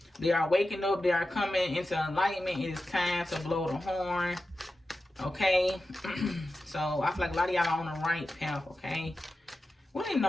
They are waking up. They are coming into enlightenment. It is time to blow the horn. Okay. So I feel like a lot of y'all are on the right path. Okay. What do you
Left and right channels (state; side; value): normal; both; correlation 0.93